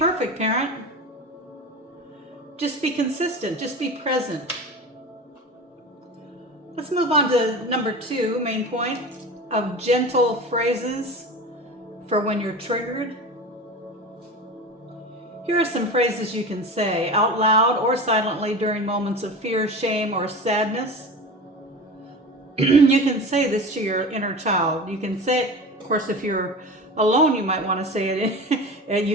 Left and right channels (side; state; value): both; normal; correlation 0.31